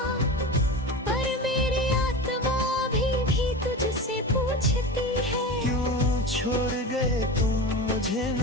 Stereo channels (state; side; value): normal; both; correlation 0.28